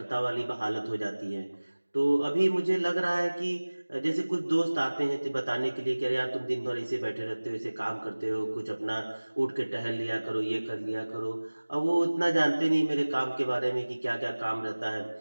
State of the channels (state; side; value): inverted; both; correlation -1.00